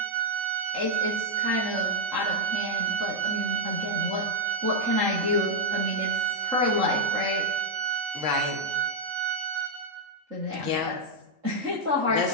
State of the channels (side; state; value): left; late; 3.7 ms